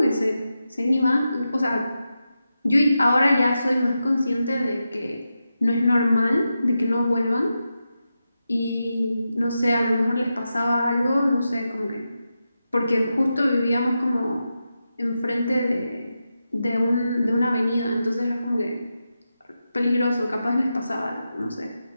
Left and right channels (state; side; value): inverted; both; correlation -0.89